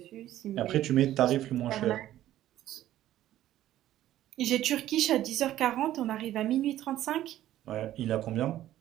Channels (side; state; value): left; quieter; 13.3 dB